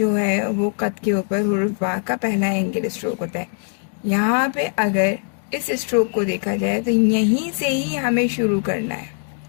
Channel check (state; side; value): silent; right; 57 dB below the other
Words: ہے وہ قط کے اوپر حروف با کا پہلا اینگل اسٹروک ہوتا ہے۔ یہاں پہ اگر اس اسٹروک کو دیکھا جائے تو یہیں سے ہی ہمیں شروع کرنا ہے۔